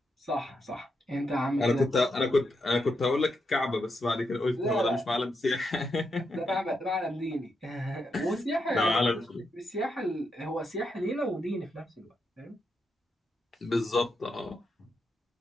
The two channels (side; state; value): both; normal; correlation 0.83